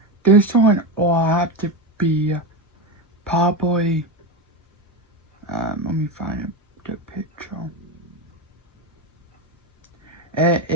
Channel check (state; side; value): normal; both; correlation 0.16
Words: this one will have to be probably, let me find the picture. It